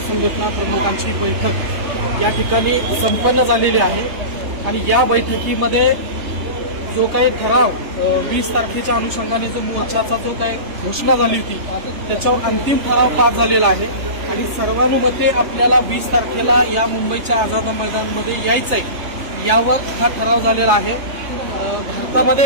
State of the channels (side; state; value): left; late; 3.2 ms